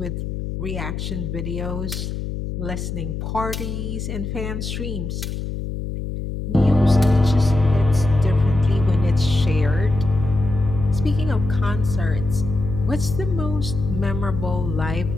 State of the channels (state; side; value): noise; left; hum, 5 dB below the sound